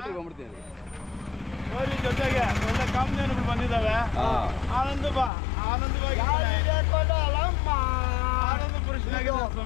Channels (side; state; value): right; drops out; at 5.3 s